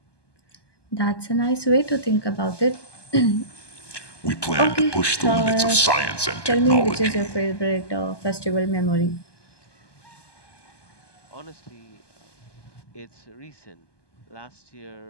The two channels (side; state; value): right; late; 1.2 ms